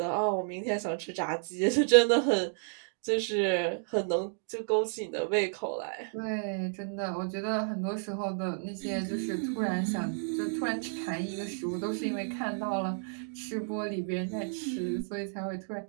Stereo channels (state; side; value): silent; left; digital silence